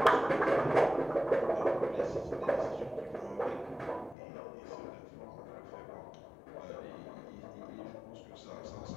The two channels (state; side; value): drops out; right; at 4.2 s